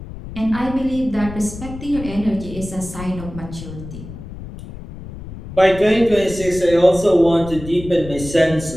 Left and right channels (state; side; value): noise; left; rumble, 12 dB below the sound